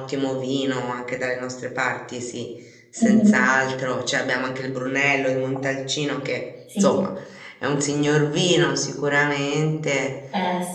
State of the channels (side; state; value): both; identical; correlation 1.00